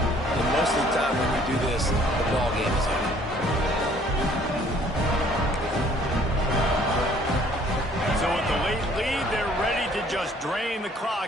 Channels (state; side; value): normal; both; correlation 0.59